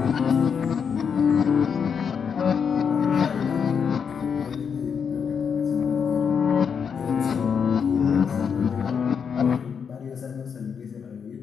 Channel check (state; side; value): quieter; right; 6.7 dB